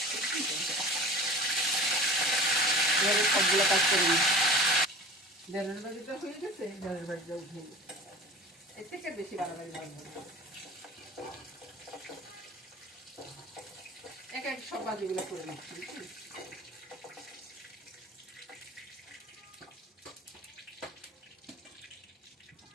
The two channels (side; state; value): both; normal; correlation 0.37